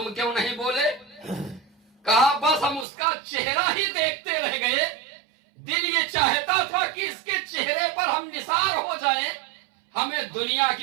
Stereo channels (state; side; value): drops out; left; at 2.9 s